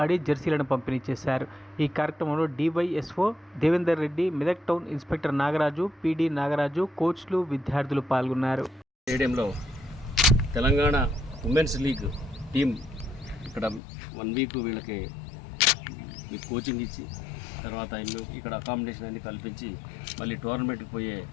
ఆడి జెర్సీలను పంపిణీ చేశారు. ఈ కార్యక్రమంలో DYSO Devender Reddy, Medak town inspector Nagaraju, PD Nagaraju, కోచ్లు, విద్యార్థులు పాల్గొన్నారు. స్టేడియంలో తెలంగాణ ఉమెన్స్ లీగ్ టీం ఇక్కడ 1 వీక్ వీళ్ళకి మీకు కోచింగ్ ఇచ్చి తర్వాత ఇక్కడ అకామిడేషన్ అన్ని కల్పించి మళ్ళీ టోర్నమెంట్కి పోయే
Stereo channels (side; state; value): right; drops out; at 13.8 s